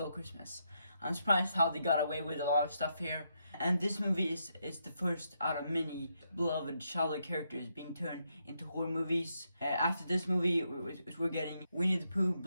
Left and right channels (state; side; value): inverted; both; correlation -0.80